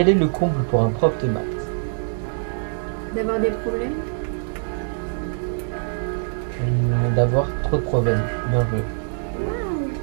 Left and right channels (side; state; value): left; silent; digital silence